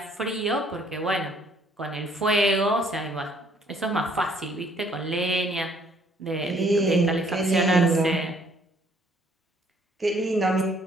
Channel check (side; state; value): both; normal; correlation 0.63